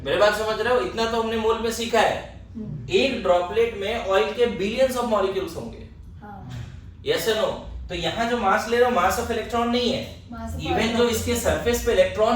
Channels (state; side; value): identical; both; correlation 1.00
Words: मेरे बात समझ रहे हो? इतना तो हमने मोल में सीखा है। एक ड्रॉपलेट में ऑयल के बिलियंस ऑफ मॉलिक्यूल्स होंगे। Yes no? तो यहाँ जो मास ले रहे हो, मास ऑफ इलेक्ट्रॉन नहीं है, इवन जो इसके सरफेस पे